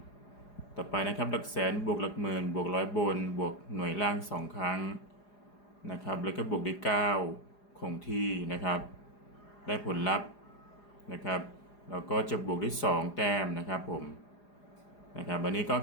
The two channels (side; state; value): right; late; 4.9 ms